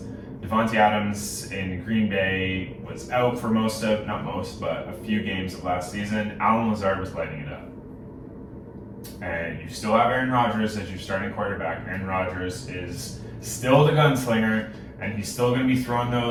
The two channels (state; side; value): identical; both; correlation 1.00